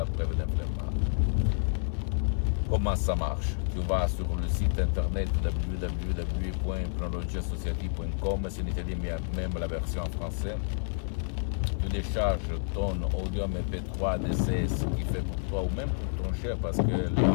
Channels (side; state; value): right; silent; 58 dB below the other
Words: preuve d'un flemmard. Comment ça marche? Tu vas sur le site internet www.hypnologieassociative.com, c'est en italien, mais même la version en français. tu décharges ton audio MP3 DCS qui fait pour toi ou même pour ton cher, parce que la